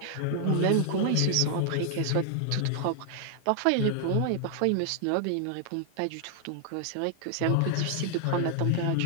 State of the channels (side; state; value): both; different; correlation 0.00